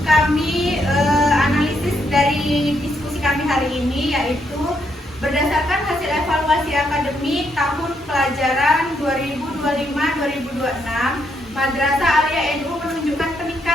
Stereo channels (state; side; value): normal; both; correlation 0.76